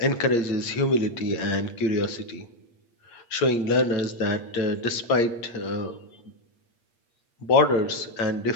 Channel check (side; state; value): right; late; 8.6 ms